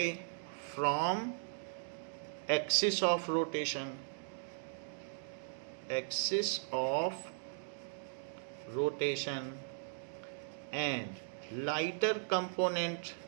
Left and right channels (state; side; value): silent; left; digital silence